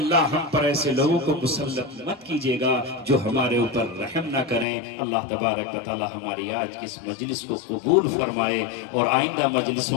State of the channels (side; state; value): right; drops out; at 4.7 s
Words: ہم پر ایسے لوگوں کو مسلط مت کیجئے گا جو ہمارے اوپر رحم نہ کریں. اللہ تبارک و تعالیٰ ہماری آج کی اس مجلس کو قبول فرمائے اور آئندہ